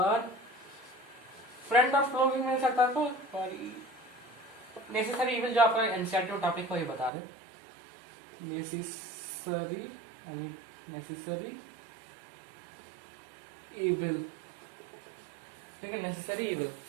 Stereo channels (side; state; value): left; drops out; at 7.1 s